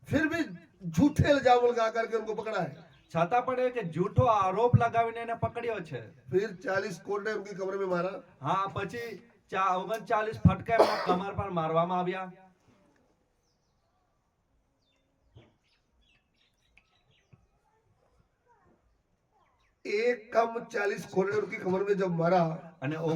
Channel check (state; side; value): identical; both; correlation 1.00